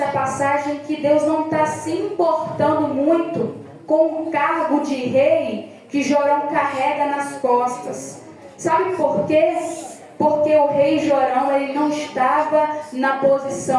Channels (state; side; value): identical; both; correlation 1.00